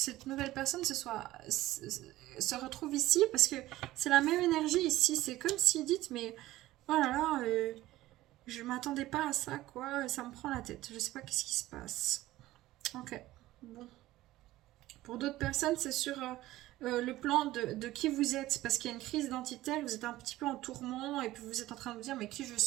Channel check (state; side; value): quieter; left; 16.3 dB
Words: nouvelle personne se retrouve ici. Parce que c'est la même énergie ici. C'est comme si dites, mais... Oh là là, je m'attendais pas à ça, quoi. Ça me prend la tête. Je sais pas qu'est-ce qui se passe. Ok, bon. Pour d'autres personnes, c'est sur le plan de qui vous êtes, parce qu'il y a une crise identitaire, vous êtes un petit peu en tourment, et puis vous êtes en train de vous dire, mais qui je